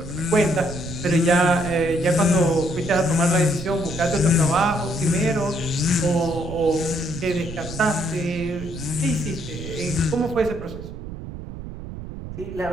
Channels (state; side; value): noise; right; rumble, 10 dB below the sound